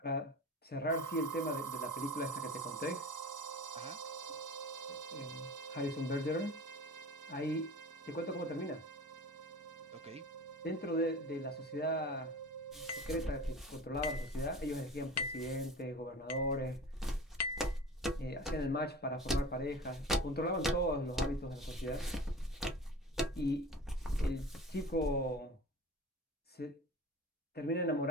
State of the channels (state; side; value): normal; both; correlation 0.37